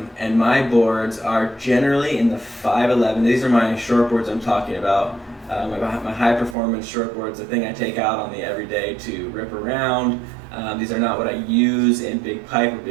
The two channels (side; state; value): left; drops out; at 6.6 s